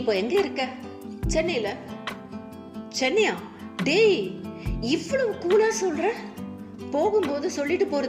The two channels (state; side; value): identical; both; correlation 1.00